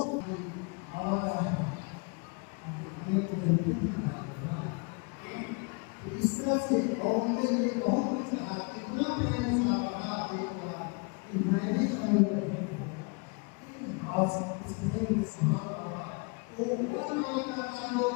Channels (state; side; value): quieter; right; 32.4 dB